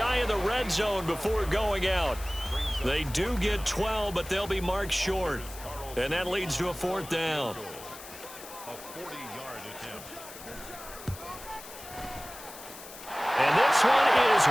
of the red zone before going out. They do get 12, but they'll be marked short. And that leads to a 4th down. A 40-yard attempt. And this one is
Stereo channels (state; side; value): noise; left; hiss, 15 dB below the sound